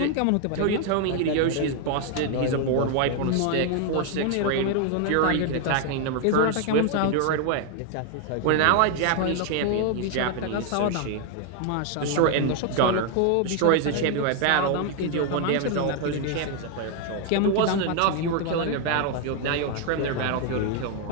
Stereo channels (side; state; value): both; different; correlation 0.00